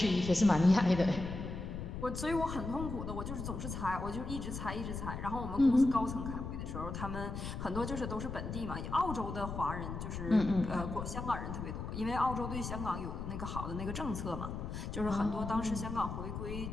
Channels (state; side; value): noise; left; rumble, 6 dB below the sound